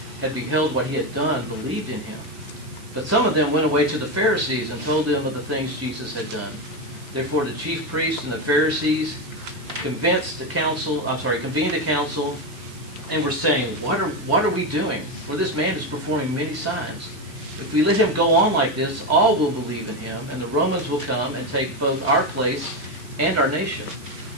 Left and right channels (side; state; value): right; noise; hiss, 22 dB below the sound